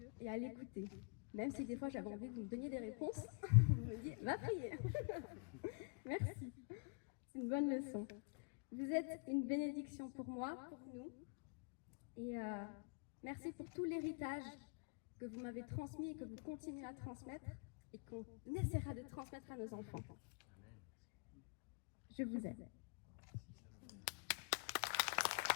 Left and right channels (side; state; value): right; quieter; 36.4 dB